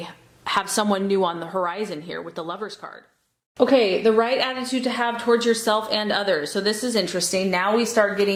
have someone new on the horizon here with the Lovers card. Okay, the right attitude to have towards yourself and others. So this is interesting. Now we start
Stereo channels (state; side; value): identical; both; correlation 1.00